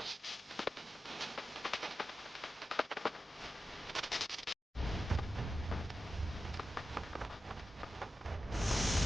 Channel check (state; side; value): normal; both; correlation 0.93